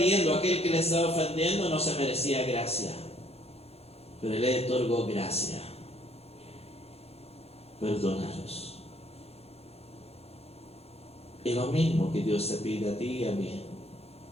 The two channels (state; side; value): late; right; 0.29 ms